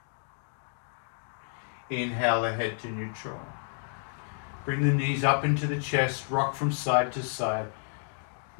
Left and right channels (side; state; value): right; silent; 57 dB below the other